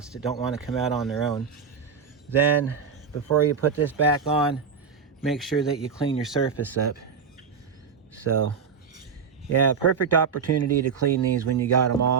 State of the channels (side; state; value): left; quieter; 6.2 dB